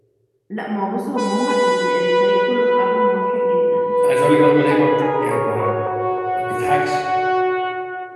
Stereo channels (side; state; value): both; identical; correlation 1.00